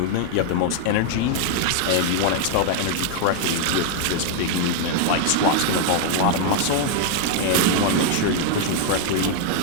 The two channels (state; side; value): different; both; correlation 0.00